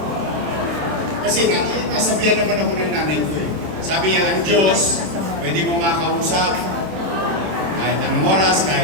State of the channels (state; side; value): late; left; 26 ms